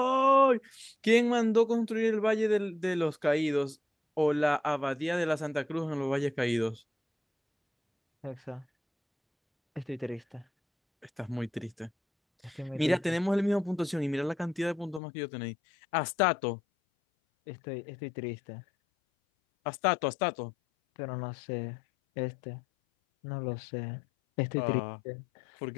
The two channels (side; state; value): right; drops out; at 15.0 s